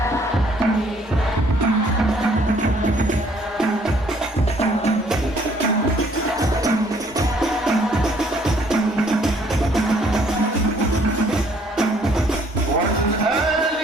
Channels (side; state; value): both; normal; correlation 0.62